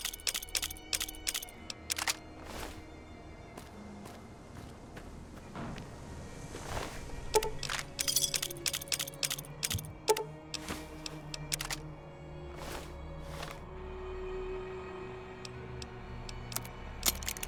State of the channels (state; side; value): identical; both; correlation 1.00